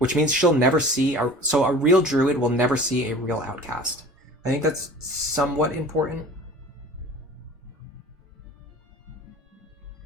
means she'll never see so a real druid will never see a real outcast. I think that's somewhat important.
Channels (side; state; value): both; normal; correlation 0.42